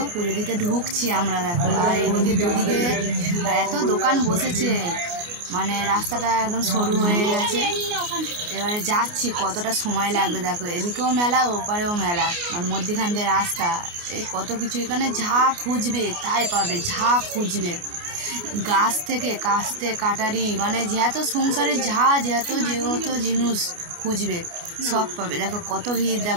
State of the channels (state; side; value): late; left; 29 ms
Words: পুজো দিতে ঢুকছি আমরা দেখো। আর এদিকে দুদিকে এত দোকান বসেছে, মানে রাস্তাটা একদম সরু হয়ে গেছে। এবারে যাচ্ছি, কতটা সময় লাগবে দেখো। এদিকেও মেলা, ওপারেও মেলা, আর মধ্যখান দিয়ে রাস্তা। এই কত কিছু, এখানে যা খুঁজবে তাই পাবে, যা খুঁজবে। গাছ থেকে কাস্তে কাটারি, মানে যত সংসারে যত জিনিস খুঁজবে সব পাবে। দেখো কত ভিড়